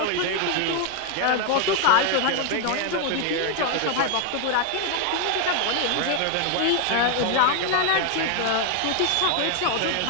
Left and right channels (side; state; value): both; different; correlation 0.01